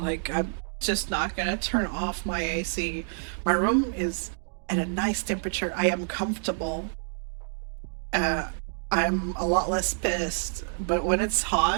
I'm just not gonna turn off my AC. My room is at a nice temperature. I am comfortable. Uh, I'm a lot less pissed. But when it's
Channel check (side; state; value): left; silent; digital silence